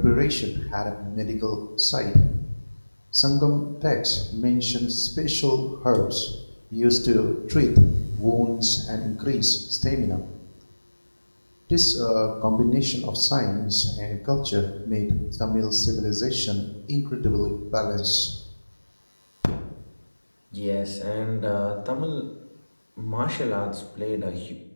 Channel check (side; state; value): both; inverted; correlation -1.00